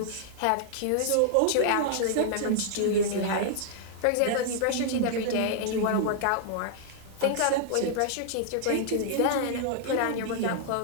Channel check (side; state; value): both; different; correlation -0.01